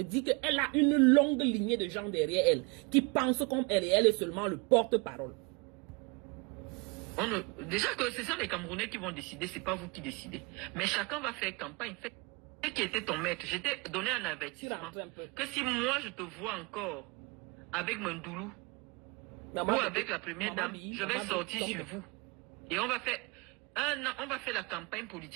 dire qu'elle a une longue lignée de gens derrière elle qui pensent comme elle et elle est seulement le porte-parole. Déjà que ce sont les Camerounais qui vont décider, c'est pas vous qui décidez. Mais chacun va faire campagne. Fait qui était ton maître. Je t'ai donné un avertissement. Que si moi je te vois encore avec mon doulou ou avec la première dame, je vais sortir sur vous. Et on va faire la campagne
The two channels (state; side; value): quieter; left; 28.2 dB